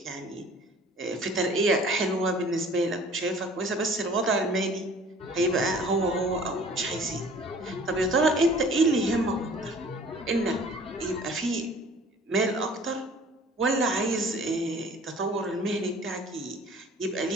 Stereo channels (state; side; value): normal; both; correlation 0.50